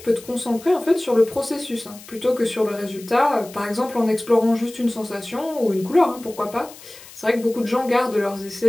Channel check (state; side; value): noise; left; hiss, 19 dB below the sound